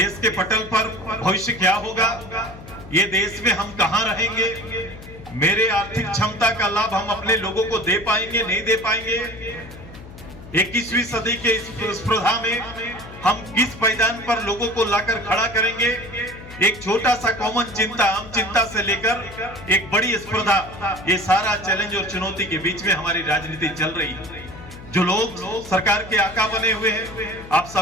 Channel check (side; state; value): left; noise; hum, 16 dB below the sound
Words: के पटल पर भविष्य क्या होगा, ये देश में हम कहां रहेंगे, मेरे आर्थिक क्षमता का लाभ हम अपने लोगों को दे पाएंगे, नहीं दे पाएंगे, 21वीं सदी के इस स्पर्धा में हम किस मैदान पर लोगों को लाकर खड़ा करेंगे। एक छोटा सा कॉमन चिंता, आम चिंता से लेकर एक बड़ी स्पर्धा, ये सारा चैलेंज और चुनौती के बीच में हमारी राजनीति चल रही है। जो लोग सरकार के आका बने हुए हैं, आप